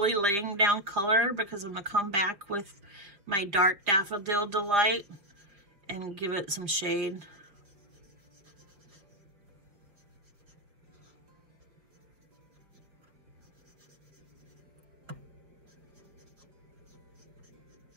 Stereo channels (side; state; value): left; late; 4.7 ms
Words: laying down color because I'm going to come back with my Dark Daffodil Delight and give it some shade.